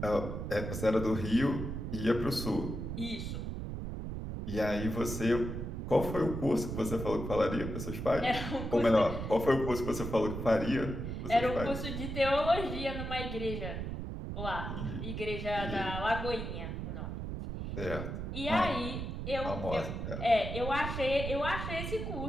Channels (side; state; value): right; noise; rumble, 5 dB below the sound